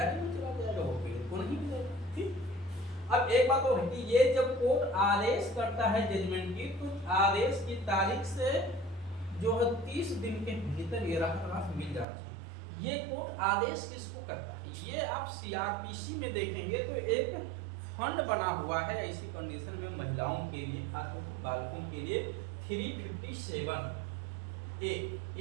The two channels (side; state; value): left; drops out; at 12.1 s